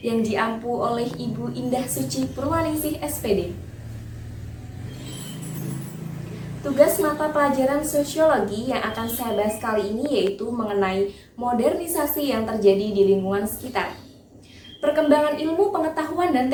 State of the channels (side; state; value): both; identical; correlation 1.00